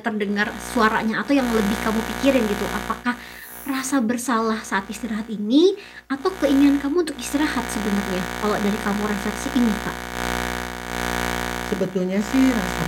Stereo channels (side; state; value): both; identical; correlation 1.00